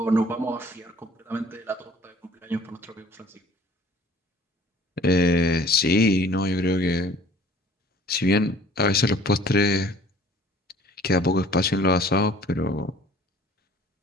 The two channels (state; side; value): normal; both; correlation 0.52